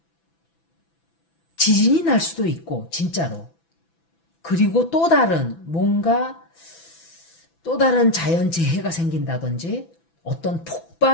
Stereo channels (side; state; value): right; late; 6.0 ms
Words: 지진이 날 수도 있고 진짜로. 그리고 또 다른 자연재해가 생긴다든지 어떤